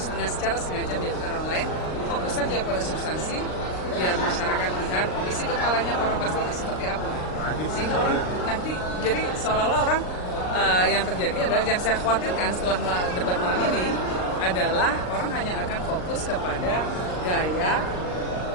secara sengaja menjatuhkan orang lain. Fokus saja pada substansi, biar masyarakat lihat isi kepalanya para paslon seperti apa, sehingga orang nanti jadi seolah-olah orang yang terjadi adalah yang saya khawatirkan setelah debat malam ini adalah orang hanya akan fokus kepada gaya,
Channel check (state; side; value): late; right; 39 ms